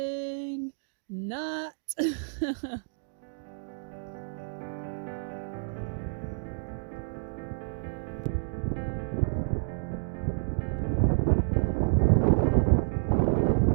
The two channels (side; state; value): left; silent; digital silence